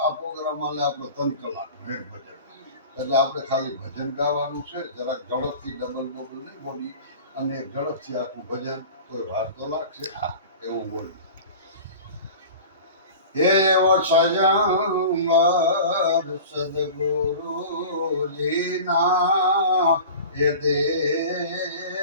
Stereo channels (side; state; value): both; inverted; correlation -0.38